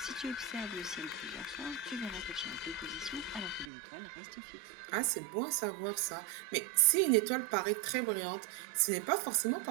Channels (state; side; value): drops out; left; at 3.7 s